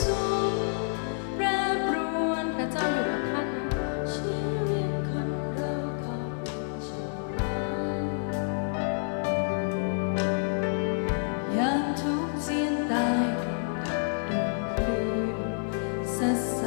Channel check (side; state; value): right; silent; digital silence